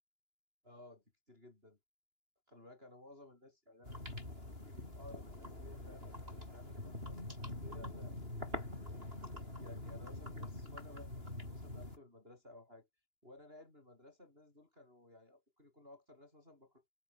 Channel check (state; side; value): late; left; 2.9 ms